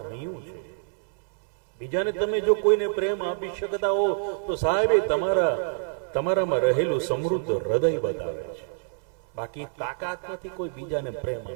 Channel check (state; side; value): silent; left; 61 dB below the other